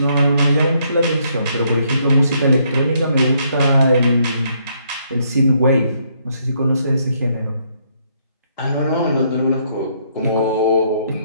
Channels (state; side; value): inverted; both; correlation -0.71